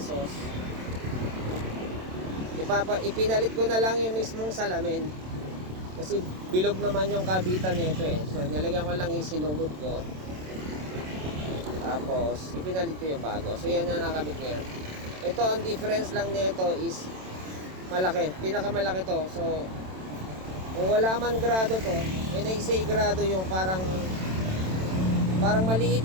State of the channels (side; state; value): left; late; 27 ms